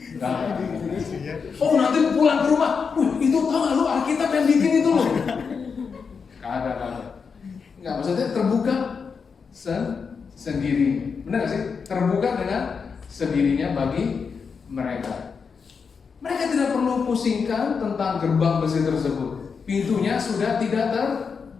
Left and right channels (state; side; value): quieter; right; 5.7 dB